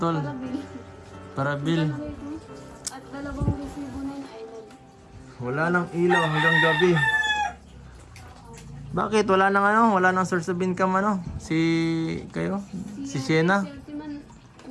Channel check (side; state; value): both; identical; correlation 1.00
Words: Parabil? At dalawang resibo na yun ay Wala nang ilaw hanggang gabi. Bakit? Wala nang source of income Si Shena? Si Ultiman,